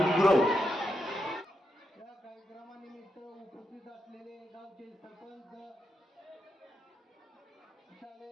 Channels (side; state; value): both; normal; correlation 0.84